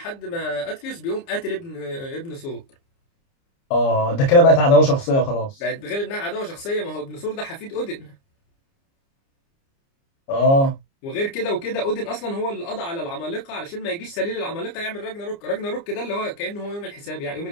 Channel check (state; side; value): late; right; 29 ms